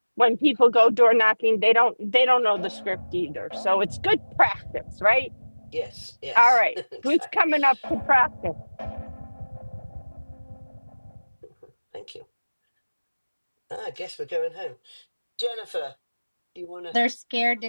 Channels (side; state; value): both; inverted; correlation -1.00